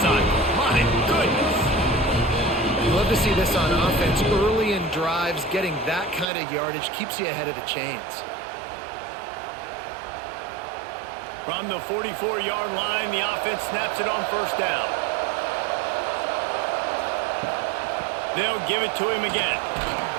cycle. My goodness. You love to see this on offense. Early in drives, getting that kind of yardage keeps you ahead of the chains. From the 44-yard line, the offense snaps it on 1st down. They'll give it to him again.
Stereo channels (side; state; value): left; drops out; at 6.2 s